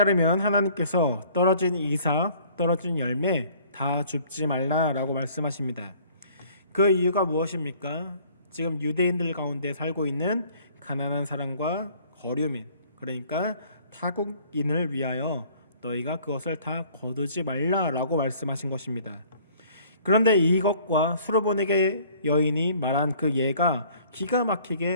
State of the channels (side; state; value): both; inverted; correlation -0.55